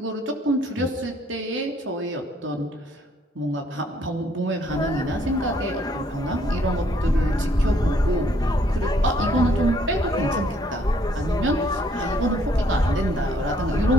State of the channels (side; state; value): both; normal; correlation 0.66